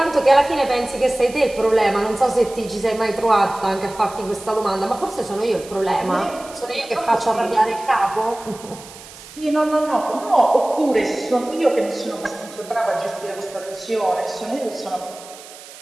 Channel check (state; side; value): noise; right; hiss, 18 dB below the sound